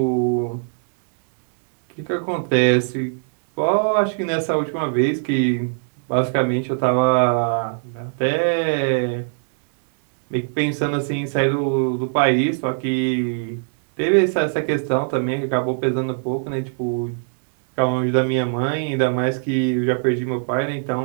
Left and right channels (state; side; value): silent; left; 62 dB below the other